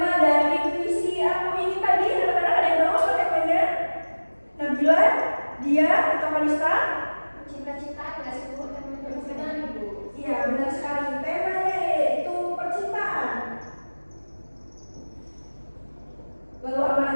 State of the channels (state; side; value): inverted; both; correlation -1.00